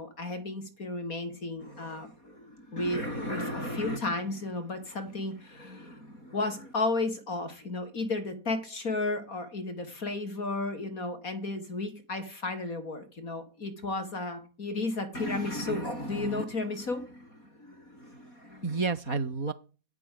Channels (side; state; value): right; late; 4.2 ms